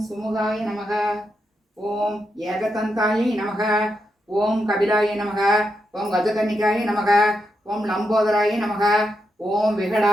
சுமுகாய நமக. ஓம் ஏகதந்தாயை நமக. ஓம் கபிலாய நமக. ஓம் கஜகன்னிகாய நமக. ஓம் லம்போதராய நமக. ஓம்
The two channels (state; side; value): normal; both; correlation 0.84